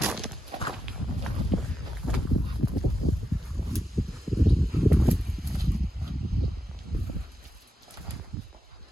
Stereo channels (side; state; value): both; normal; correlation 0.86